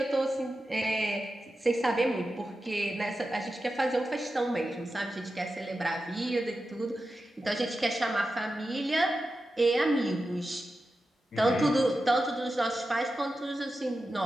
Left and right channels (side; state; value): both; normal; correlation 0.91